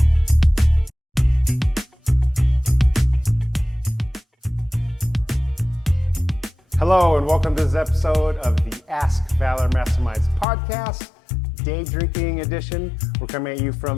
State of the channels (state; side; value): drops out; right; at 10.5 s